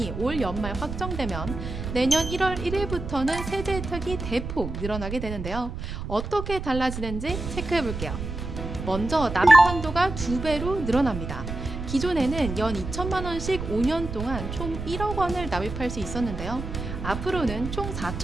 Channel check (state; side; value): noise; right; rumble, 7 dB below the sound